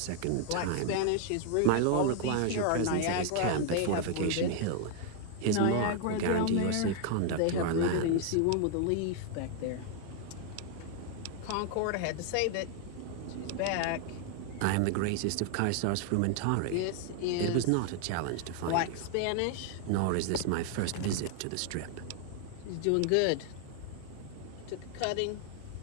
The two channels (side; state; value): both; different; correlation 0.00